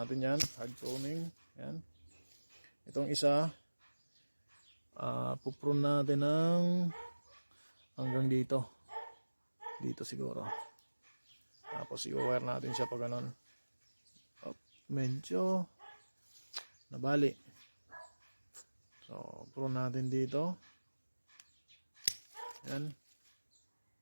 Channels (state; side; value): inverted; both; correlation -1.00